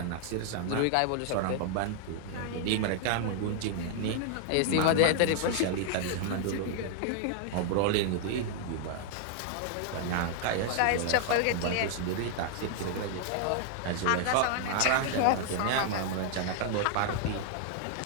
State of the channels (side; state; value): both; different; correlation 0.00